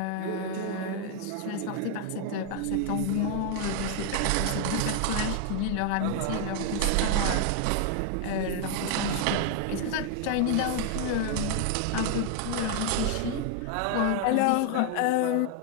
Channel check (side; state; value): both; different; correlation 0.00